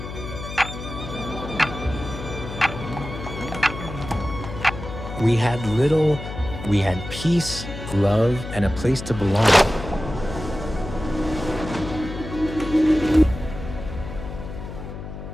We had little, we had peace, love, and a place to belong.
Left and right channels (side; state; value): left; noise; hum, 10 dB below the sound